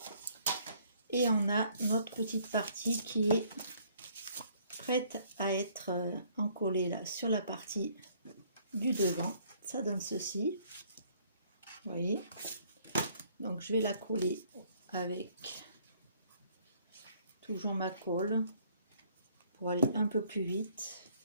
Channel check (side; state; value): both; inverted; correlation -0.63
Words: Et on a notre petite partie qui est prête à être encollée là sur la partie du devant. Ça donne ceci. Vous voyez. Donc je vais la coller avec toujours ma colle pour aller un peu plus vite.